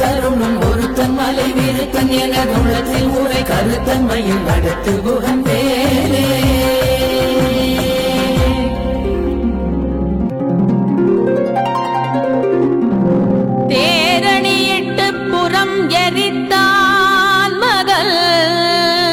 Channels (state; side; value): identical; both; correlation 1.00